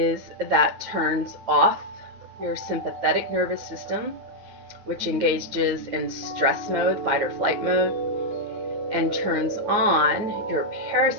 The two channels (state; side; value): late; left; 9.6 ms